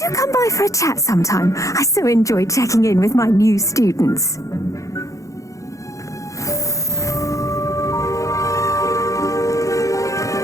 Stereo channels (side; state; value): right; late; 0.16 ms